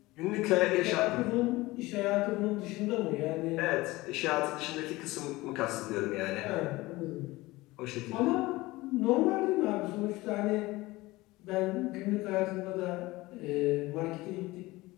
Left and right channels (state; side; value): quieter; right; 20.0 dB